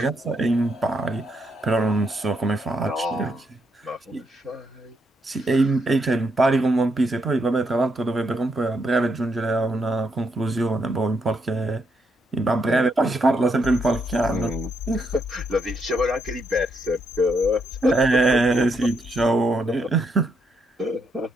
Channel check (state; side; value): normal; both; correlation 0.78